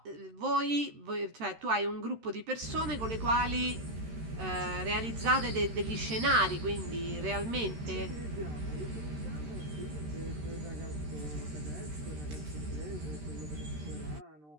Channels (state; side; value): late; left; 13 ms